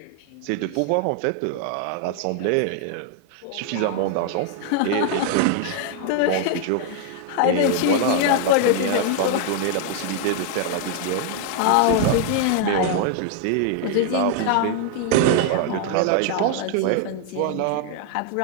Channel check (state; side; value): different; both; correlation 0.00